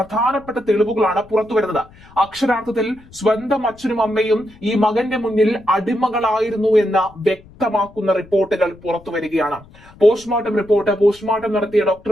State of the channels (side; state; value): left; noise; rumble, 24 dB below the sound